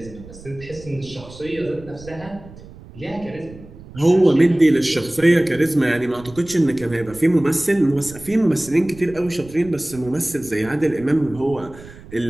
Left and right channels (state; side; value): noise; right; rumble, 18 dB below the sound